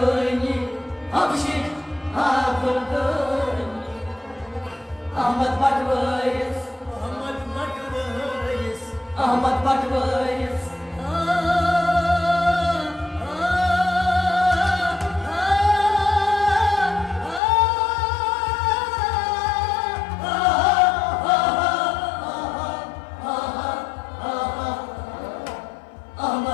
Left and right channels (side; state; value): right; drops out; at 17.4 s